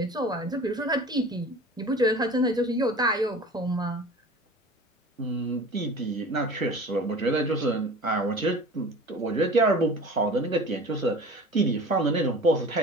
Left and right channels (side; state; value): both; normal; correlation 0.40